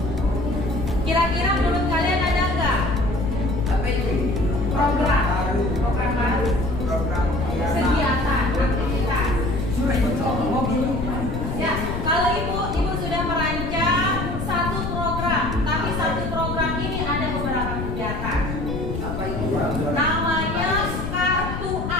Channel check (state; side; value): noise; left; rumble, 4 dB below the sound